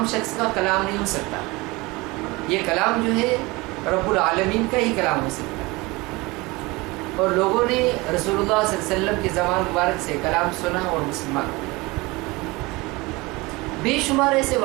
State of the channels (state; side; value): quieter; left; 23.2 dB